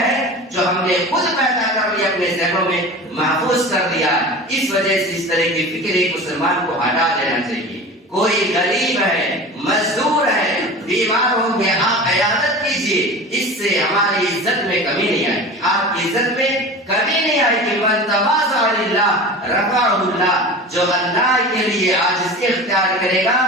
ہے جو ہم نے خود پیدا کر لی، اپنے ذہنوں میں محفوظ کر دیا۔ اس وجہ سے اس طرح کی فکر ایک مسلمان کو ہٹا دینا چاہیے۔ کوئی غریب ہے، مزدور ہے، بیمار ہوں گے، آپ عیادت کیجیے، اس سے ہماری عزت میں کمی نہیں آئے گی، آپ کی عزت میں کمی نہیں آئے گی۔ من تواضع للہ رفعہ اللہ، جو اللہ کے لیے عاجزی اختیار کرے گا،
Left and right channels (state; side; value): normal; both; correlation 0.34